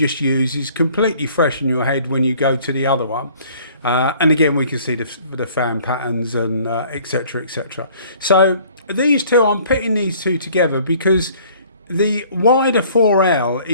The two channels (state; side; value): inverted; both; correlation -0.55